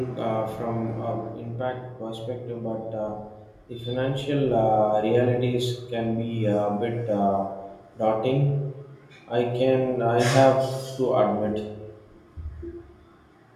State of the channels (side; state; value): both; identical; correlation 1.00